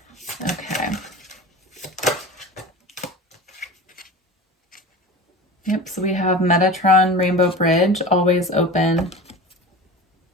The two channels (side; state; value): both; normal; correlation 0.33